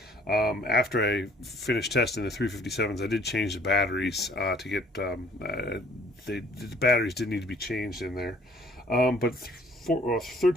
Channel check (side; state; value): both; normal; correlation 0.58